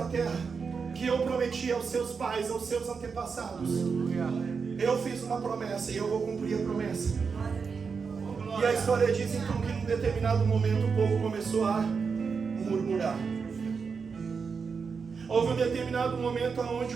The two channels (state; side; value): quieter; left; 5.5 dB